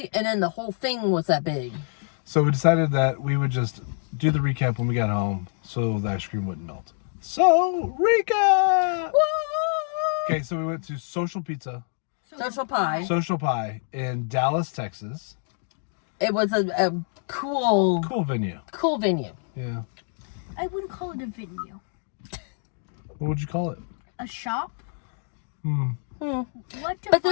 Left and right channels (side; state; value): right; silent; 61 dB below the other